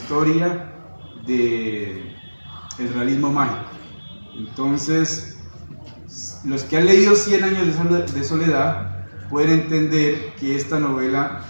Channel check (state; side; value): inverted; both; correlation -1.00